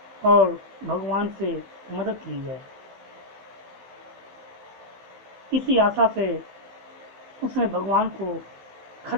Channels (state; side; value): late; left; 16 ms